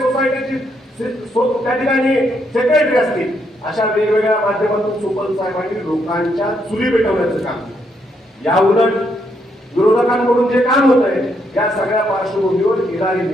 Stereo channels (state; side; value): normal; both; correlation 0.76